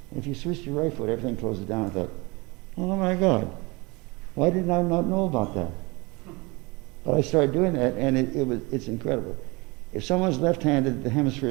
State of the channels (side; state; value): left; quieter; 25.7 dB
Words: And if you switch to your right foot, everything closes down. I thought, oh my God, why did I not know about that? But I started doing that, and it's incredible. If someone's left-handed, the hemisphere